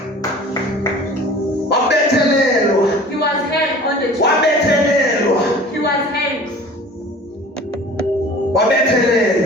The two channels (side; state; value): both; normal; correlation 0.44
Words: Wabethelelwa. He was hanged on the tree. Wabethelelwa. He was hanged.